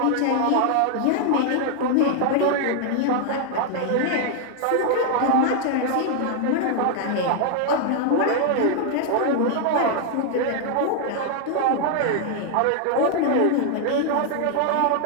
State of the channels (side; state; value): both; different; correlation 0.00